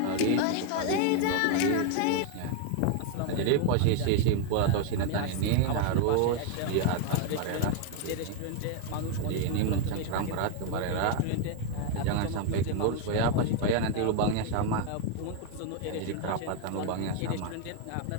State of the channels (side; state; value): both; different; correlation 0.01